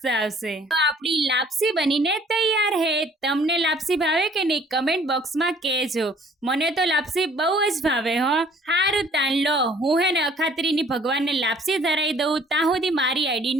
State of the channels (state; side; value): normal; both; correlation 0.56